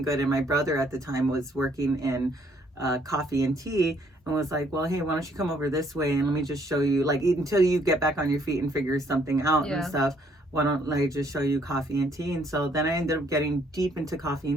good. And my brother at the time was working in coffee and tea, and was like, well, hey, why don't you come over this way and let me just show you, like, until you get back on your feet and figure something out and stuff, why don't I just show you coffee and tea? And so then I ended up getting deep into coffee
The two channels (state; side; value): normal; both; correlation 0.66